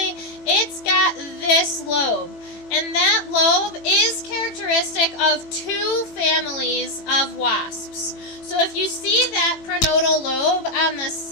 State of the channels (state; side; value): late; right; 18 ms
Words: it's got this lobe. And that lobe is characteristic of 2 families of wasps. So if you see that prenodal lobe on the